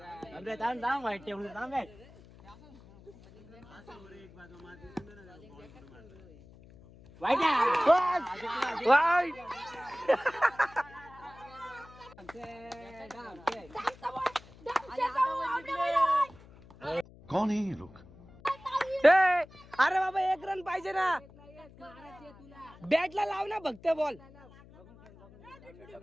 वाईट कौन है ये लोग? ए, अरे बाबा 1 रन पाहिजे ना. बॅटला लाव ना फक्त बॉल.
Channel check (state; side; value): noise; left; hum, 22 dB below the sound